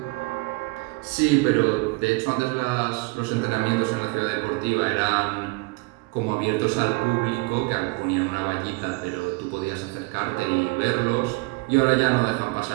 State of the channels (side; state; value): left; quieter; 26.0 dB